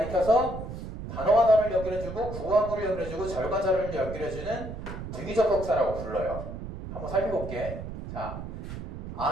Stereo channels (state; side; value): noise; right; rumble, 8 dB below the sound